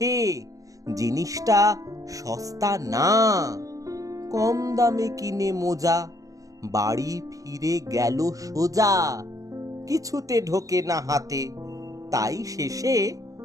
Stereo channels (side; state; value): left; late; 0.17 ms